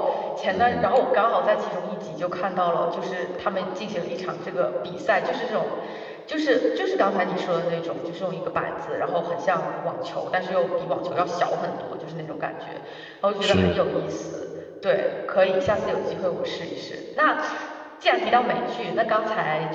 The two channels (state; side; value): identical; both; correlation 1.00